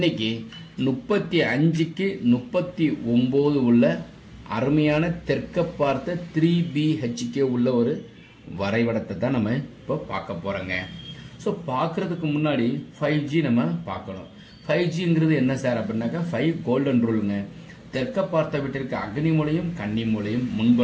35க்கு 39 உள்ள அருமையான தெற்க பார்த்த 3BHK உள்ள ஒரு வரைபடத்தை தான் நம்ம இப்போ பார்க்க போறோங்க. ஸோ பார்க்கறதுக்கு முன்னாடி 5G நம்ம பார்க்கணும். 5Gங்கிறது என்ன சார் அப்படின்னாக்கா 5 கோல்டன் ரூலுங்க. தெற்க பார்த்த வீட்டிற்கு அக்னி மூலையும் கன்னி மூலையும்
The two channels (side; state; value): both; identical; correlation 1.00